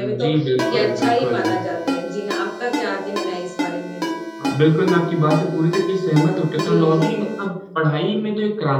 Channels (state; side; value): identical; both; correlation 1.00